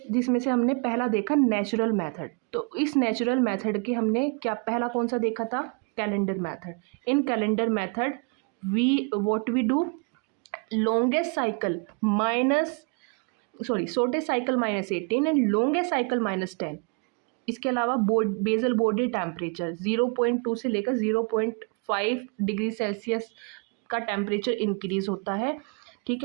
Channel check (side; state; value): left; quieter; 35.4 dB